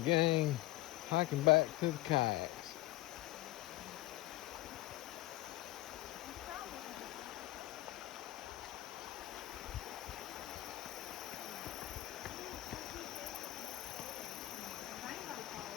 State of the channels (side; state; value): right; quieter; 17.3 dB